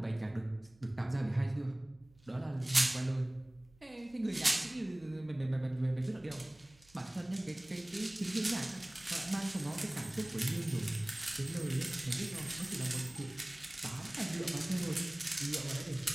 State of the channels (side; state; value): right; noise; hum, 28 dB below the sound